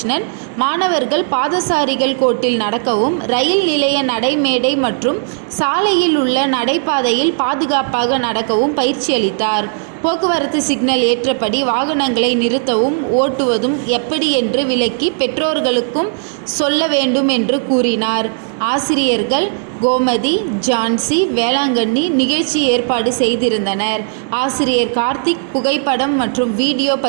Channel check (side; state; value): left; silent; 69 dB below the other